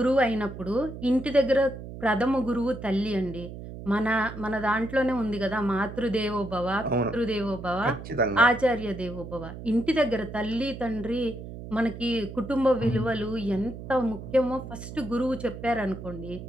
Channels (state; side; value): noise; right; hum, 11 dB below the sound